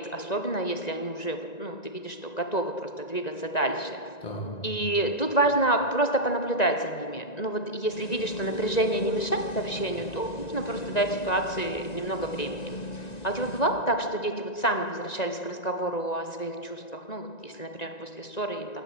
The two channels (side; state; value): right; late; 1.9 ms